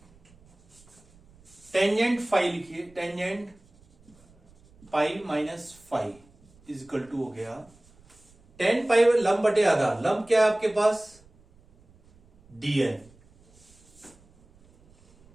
टेंजेंट फाई लिखिए, tangent pi minus 5 is equal to हो गया tan पाई लंब बटे आधा। लंब क्या है आपके पास? dn,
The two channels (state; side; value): noise; right; rumble, 29 dB below the sound